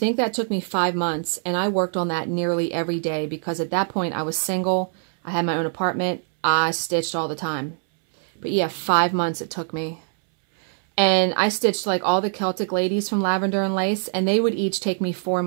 that took me 5 months, and I worked on that nearly every day because at that point I was single. I had my own apartment. I stitched all the time. But yeah, 5 months it took me. And I stitched like all the Celtic ladies from Lavender and Lace, and they would each take me 4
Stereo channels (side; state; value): left; silent; 63 dB below the other